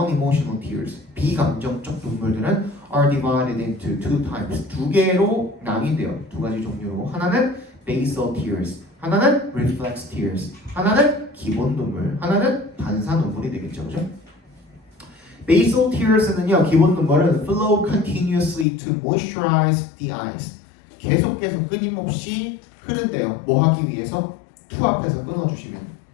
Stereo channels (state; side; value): drops out; right; at 18.7 s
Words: tears, 비감정적 눈물들은 are divided into two types. 두 개로 나뉘어요. 두 가지 종류로. 하나는 basal tears, 하나는 reflex tears, 하나는 기본 눈물, 하나는 반사 눈물이 되겠죠, 그죠? basal tears는요, 기본 눈물은 flow continuously to moisturize the eyes. 계속 끊임없이 흐른대요. 뭐 하기 위해서? to 앞에서 끊어주시면.